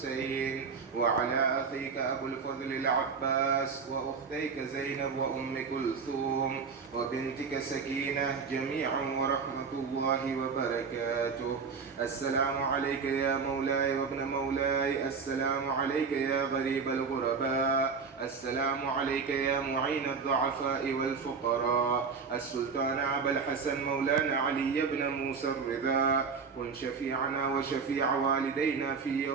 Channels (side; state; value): left; quieter; 5.4 dB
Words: وعلى أخيك أبو الفضل العباس وأختيك زينب وأم كلثوم وبنتك سكينة جميعا ورحمة الله وبركاته. السلام عليك يا مولاي وابن مولاي، السلام السلام عليك يا غريب الغرباء، السلام عليك يا معين الضعفاء والفقراء، السلطان أبا الحسن مولانا علي بن موسى الرضا، كن شفيعنا وشفيع والدينا في